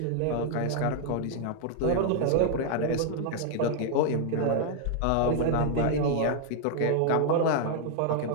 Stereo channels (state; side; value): different; both; correlation 0.00